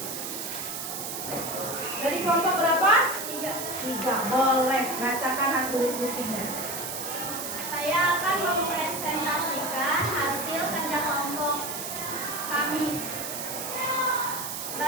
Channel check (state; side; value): noise; right; hiss, 6 dB below the sound